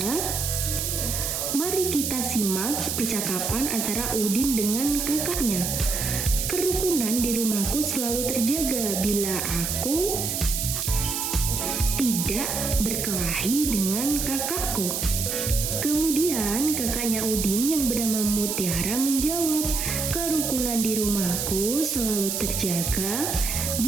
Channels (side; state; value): right; noise; hiss, 1 dB below the sound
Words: Mari kita simak percakapan antara Udin dengan kakaknya. Kerukunan di rumahku selalu terjaga bila aku tidak berkelahi dengan kakakku. Kemudian kakaknya Udin yang bernama Mutiara menjawab, kerukunan di rumahku selalu terjaga